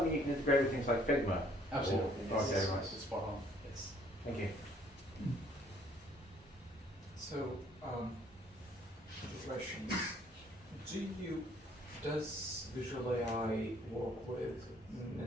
mean you can integrate with things like Figma? Absolutely. Or- Yes. Okay, right. Spot on. Yes. Thank you. So, the questions. Does Visual AI work with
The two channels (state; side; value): normal; both; correlation 0.61